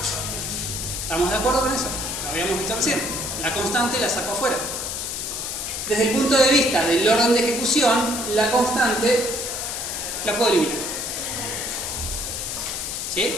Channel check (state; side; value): noise; left; hiss, 4 dB below the sound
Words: ¿Estamos de acuerdo con eso? Lo habíamos visto recién. La constante la saco afuera. Desde el punto de vista del orden de ejecución, la constante la puedo eliminar. ¿Sí?